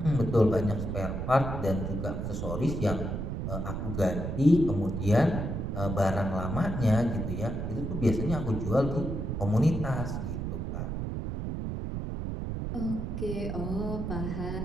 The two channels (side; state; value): right; noise; rumble, 3 dB below the sound